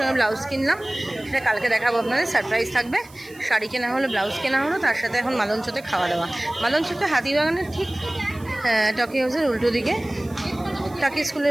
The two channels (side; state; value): right; noise; hiss, 24 dB below the sound